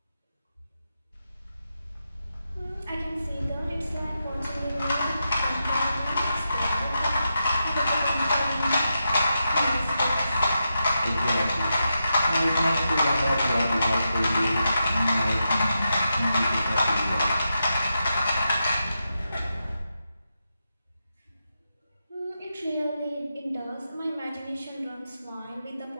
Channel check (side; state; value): both; inverted; correlation -0.87